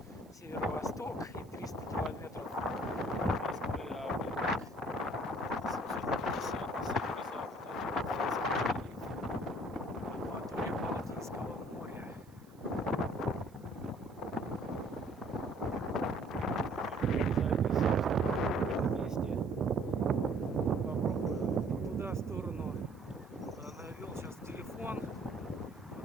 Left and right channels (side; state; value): right; noise; hiss, 29 dB below the sound